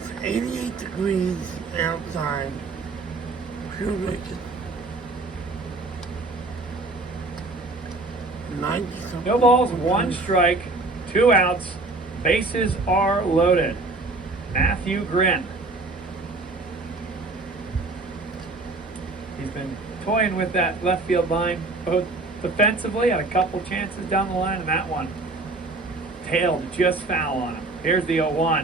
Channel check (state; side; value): quieter; left; 3.3 dB